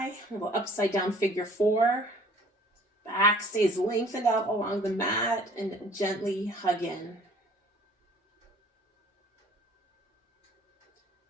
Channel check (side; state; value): both; normal; correlation 0.53